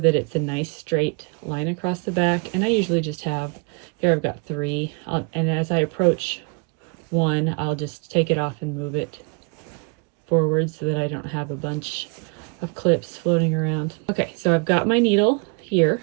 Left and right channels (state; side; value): quieter; left; 33.9 dB